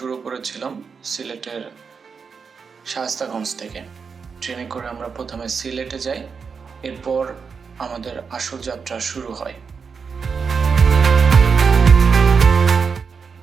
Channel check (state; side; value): quieter; left; 5.7 dB